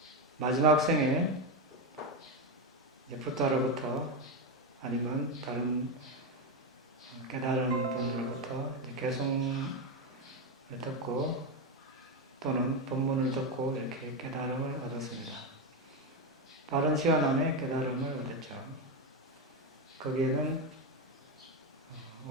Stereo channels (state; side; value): normal; both; correlation 0.10